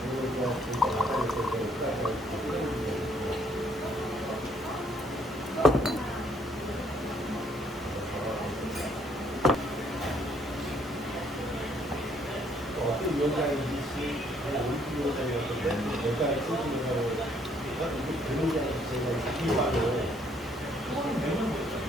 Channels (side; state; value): both; normal; correlation 0.66